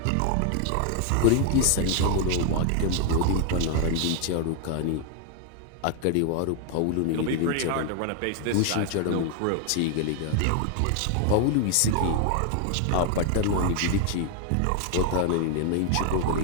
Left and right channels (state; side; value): different; both; correlation 0.00